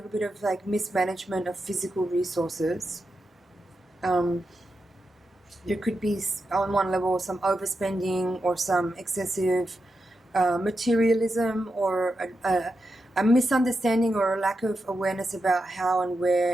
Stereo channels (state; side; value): normal; both; correlation 0.88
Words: bit of like mismanagement of physical resources. There could be on one level some overspending or some excessive materialism or a misunderstanding or a lack of awareness about how and